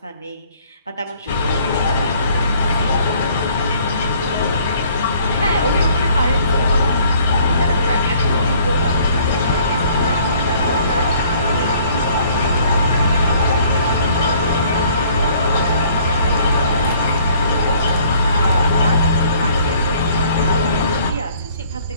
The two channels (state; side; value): inverted; both; correlation -0.58